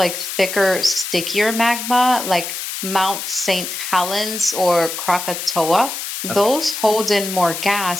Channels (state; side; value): noise; left; hiss, 6 dB below the sound